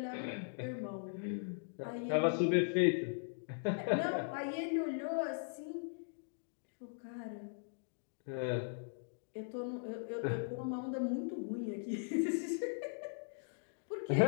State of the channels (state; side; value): silent; right; digital silence